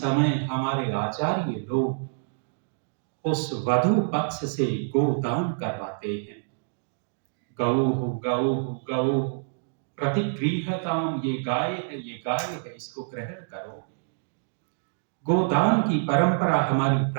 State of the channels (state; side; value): silent; left; digital silence